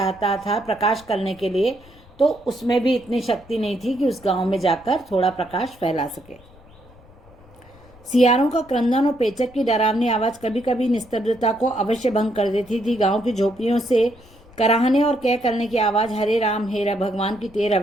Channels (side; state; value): left; noise; rumble, 25 dB below the sound